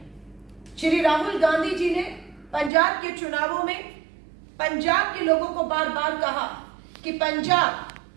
श्री राहुल गांधी जी ने पंजाब के चुनावों में पंजाब के लोगों को बार बार कहा कि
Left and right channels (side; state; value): left; drops out; at 2.7 s